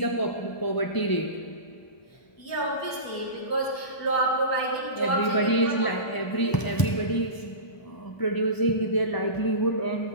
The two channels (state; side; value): late; right; 1.0 ms